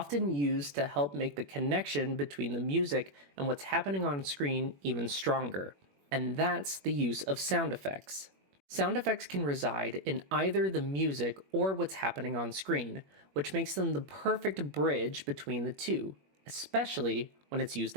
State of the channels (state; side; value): late; left; 21 ms